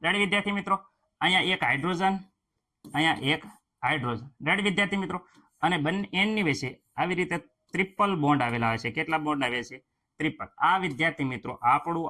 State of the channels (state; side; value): identical; both; correlation 1.00